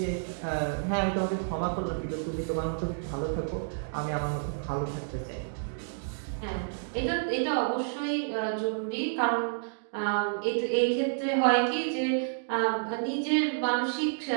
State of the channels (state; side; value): silent; left; digital silence